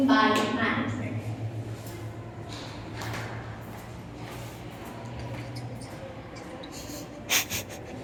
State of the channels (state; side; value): identical; both; correlation 1.00